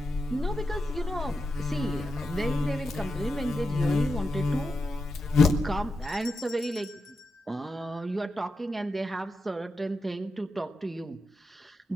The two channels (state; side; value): normal; both; correlation 0.87